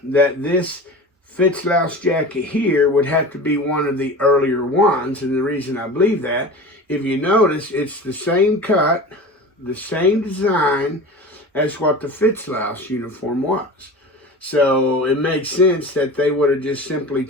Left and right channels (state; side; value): normal; both; correlation 0.34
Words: that this Fitzlouse jacket here would have to be one of the earlier ones, and the reason I believe that, if you notice, it's the same cut, the same design as what the Fitzlouse uniform was. So it makes sense that they would have just simply